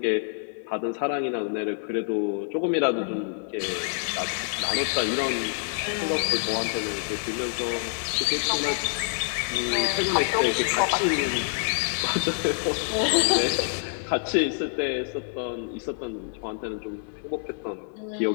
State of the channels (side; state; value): right; silent; digital silence